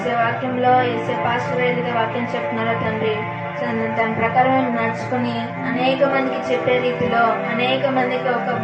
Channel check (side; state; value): both; identical; correlation 1.00